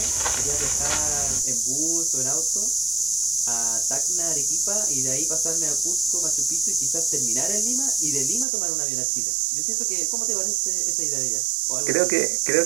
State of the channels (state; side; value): drops out; left; at 8.5 s